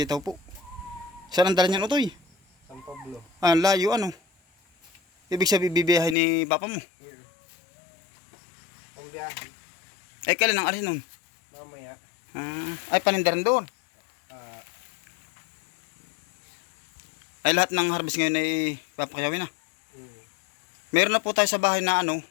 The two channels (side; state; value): right; drops out; at 6.2 s